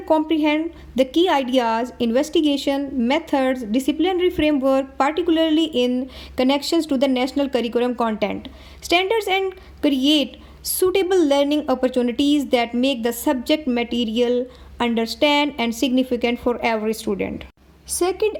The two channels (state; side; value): identical; both; correlation 1.00